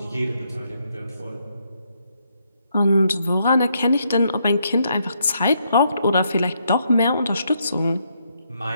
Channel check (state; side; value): inverted; both; correlation -0.76